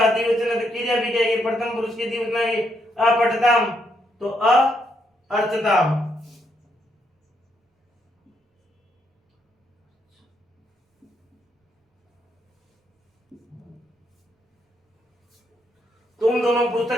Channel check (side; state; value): both; normal; correlation 0.76